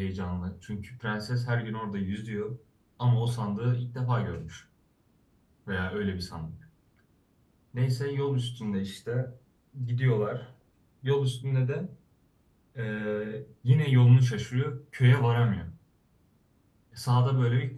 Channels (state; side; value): identical; both; correlation 1.00